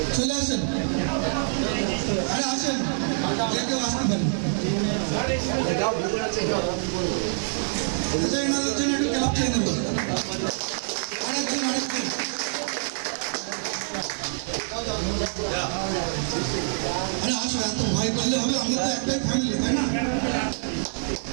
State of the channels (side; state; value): left; silent; digital silence